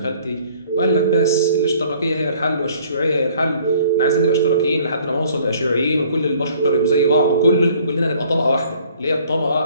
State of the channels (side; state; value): both; inverted; correlation -0.57